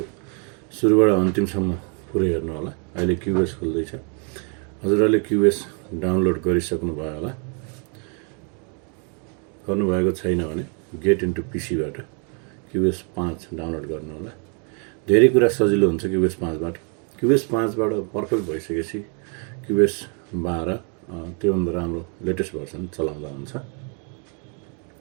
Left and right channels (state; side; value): quieter; left; 38.8 dB